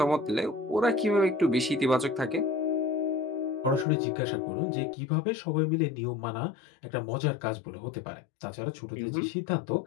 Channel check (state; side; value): drops out; right; at 3.9 s